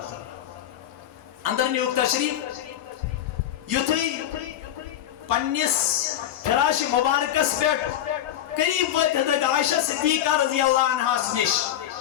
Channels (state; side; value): quieter; right; 11.4 dB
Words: اندر نیوک تشریف یتوی پنیس فراش مبارکس پیٹ قریب وقت حضرت عائشہ صدیقہ رضی اللہ عنہ سنش